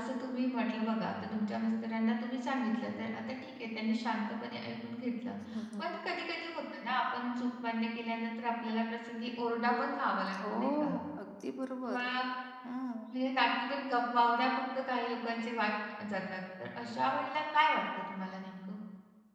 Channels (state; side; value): identical; both; correlation 1.00